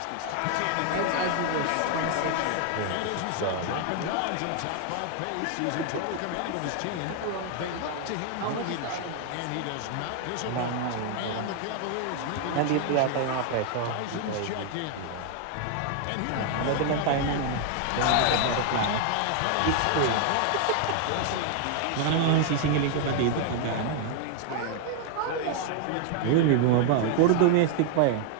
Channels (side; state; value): both; different; correlation 0.00